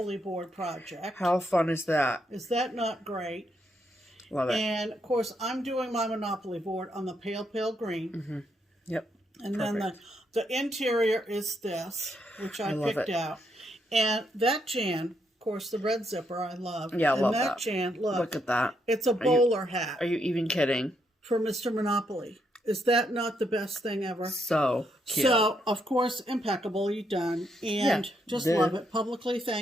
board project. How fun is that? Is that not great? Love it. And of course, I'm doing my Monopoly board on the pale green. Yep. And then the interior is this, which I picked out. And that Jan, of course, the red zipper I love. Yeah, I love that. And that. Jan, look at that. It's a bowler hat. Are you even kidding? For Mr. Monopoly. Is that not the best thing ever? So cute. So, of course, impeccably done. And just love it. Publicly,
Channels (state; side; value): normal; both; correlation 0.77